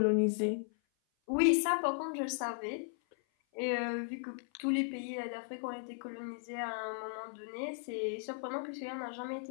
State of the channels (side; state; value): right; silent; 54 dB below the other